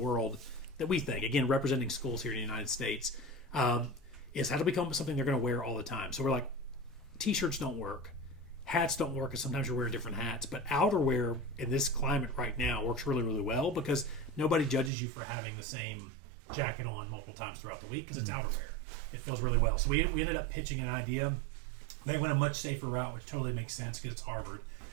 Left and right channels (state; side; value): drops out; left; at 14.9 s